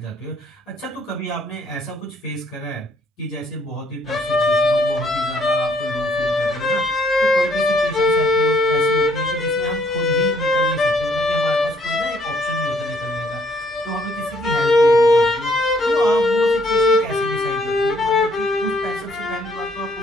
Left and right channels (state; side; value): normal; both; correlation 0.66